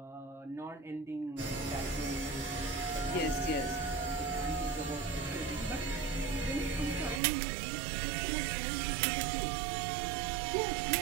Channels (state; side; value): drops out; left; at 7.2 s